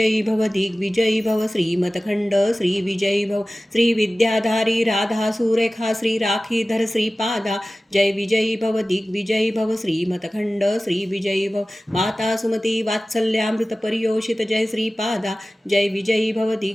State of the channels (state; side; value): normal; both; correlation 0.97